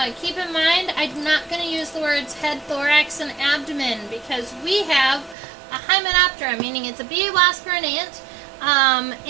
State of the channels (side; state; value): left; drops out; at 5.4 s